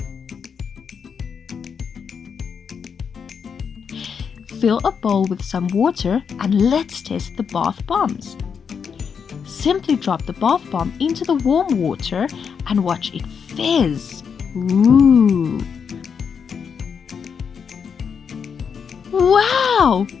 Fill a bowl with some water and let's test the bath bombs. Simply drop the bath bomb into the warm water and watch it fizz. Ooh! Wow!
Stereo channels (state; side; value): quieter; right; 6.6 dB